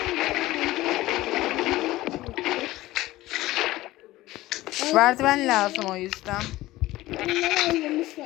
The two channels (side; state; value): right; quieter; 17.2 dB